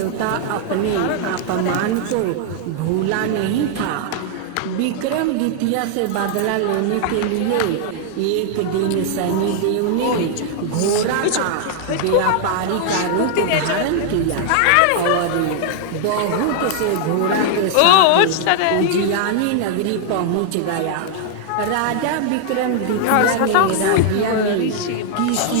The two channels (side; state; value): both; different; correlation -0.01